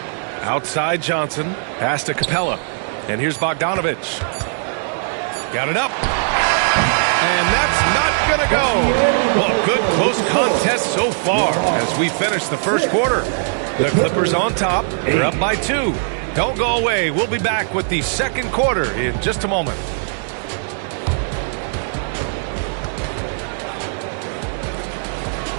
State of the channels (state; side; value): silent; left; digital silence